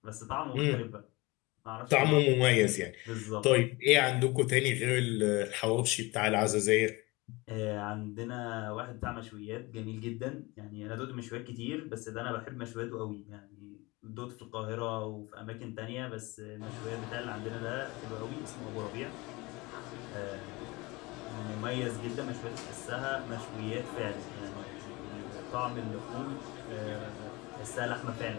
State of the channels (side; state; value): right; quieter; 23.5 dB